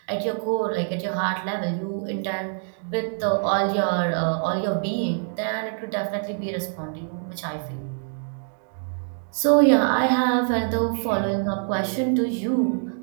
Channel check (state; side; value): silent; left; 62 dB below the other